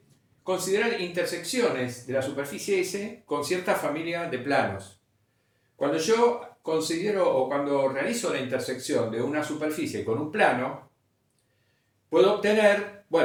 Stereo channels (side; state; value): both; identical; correlation 1.00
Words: considerar intersecciones de la superficie S con cierta familia de planos. Cuando yo considero o cuando realizo la intersección de una superficie con un plano, puedo obtener,